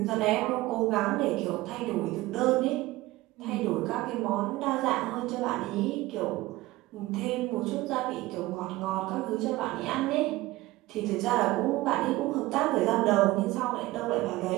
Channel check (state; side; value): quieter; left; 18.7 dB